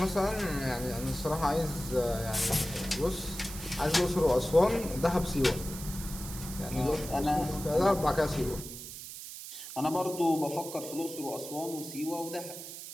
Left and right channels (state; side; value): noise; right; hiss, 11 dB below the sound